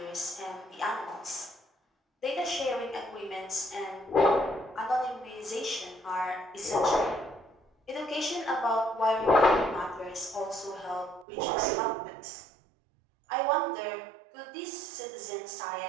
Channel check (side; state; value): left; drops out; at 11.2 s